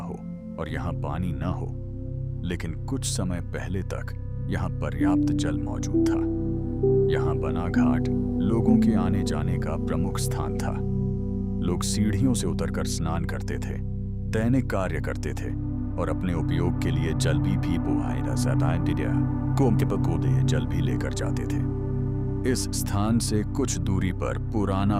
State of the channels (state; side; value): identical; both; correlation 1.00